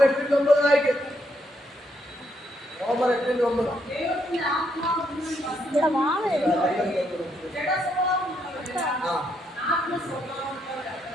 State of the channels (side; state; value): both; normal; correlation 0.76